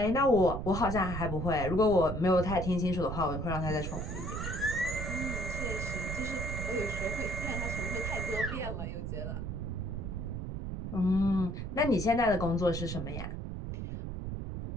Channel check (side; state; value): right; noise; rumble, 5 dB below the sound